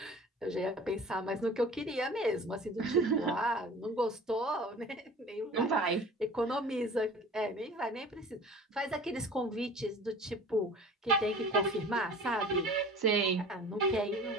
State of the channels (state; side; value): normal; both; correlation 0.42